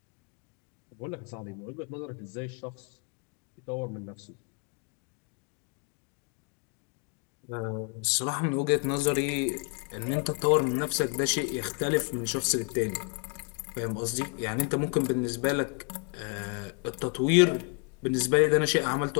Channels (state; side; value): quieter; right; 36.3 dB